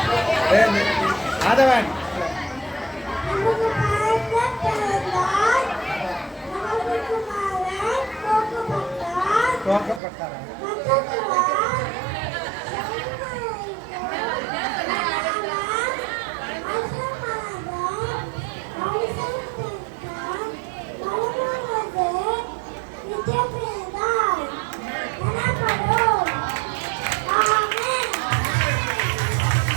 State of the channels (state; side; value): drops out; left; at 10.0 s